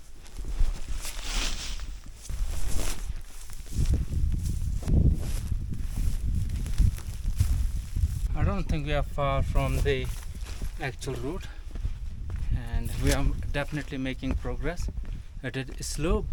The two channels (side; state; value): both; identical; correlation 1.00